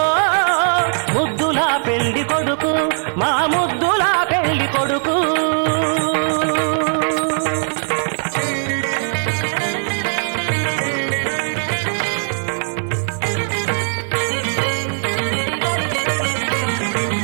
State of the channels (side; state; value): left; silent; 66 dB below the other